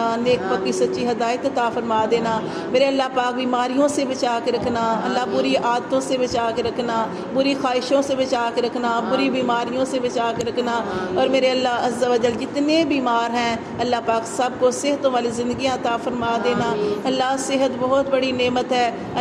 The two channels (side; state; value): both; identical; correlation 1.00